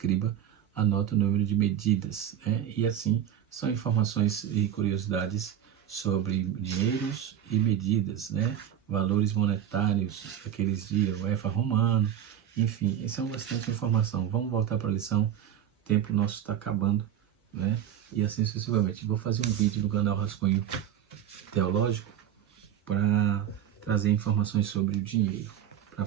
anota o número de medidas, né? E assim são informações e curiosidades sobre dinheiros e medidas, né? Valores monetários daqueles dias, o efa romano, enfim, isso é bastante informação. Vamos voltar para a lição, o tempo nosso está acabando, né? E assim sucessivamente. Vou fazer um vídeo no canal Rascunho Teológico para trazer informações sobre o dinheiro, para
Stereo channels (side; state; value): left; quieter; 10.0 dB